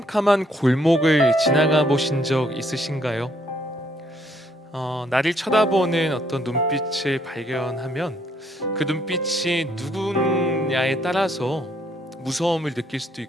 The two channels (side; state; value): both; normal; correlation 0.69